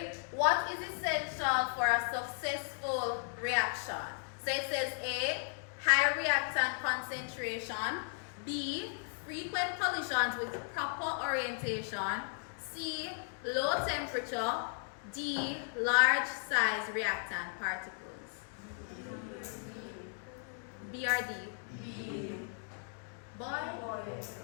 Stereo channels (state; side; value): silent; right; 54 dB below the other